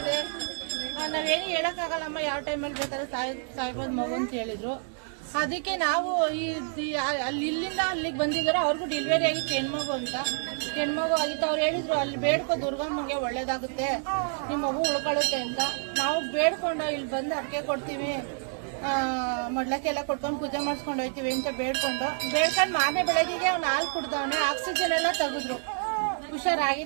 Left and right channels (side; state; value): left; silent; 59 dB below the other